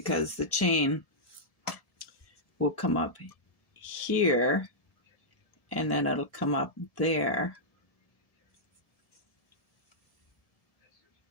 the chain will come up here and then it'll come up there.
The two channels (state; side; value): late; right; 1.7 ms